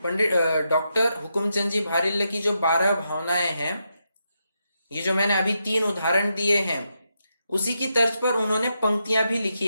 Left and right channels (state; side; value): inverted; both; correlation -0.84